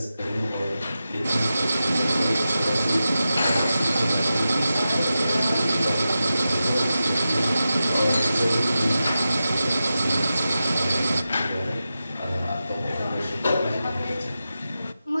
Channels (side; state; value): both; inverted; correlation -0.92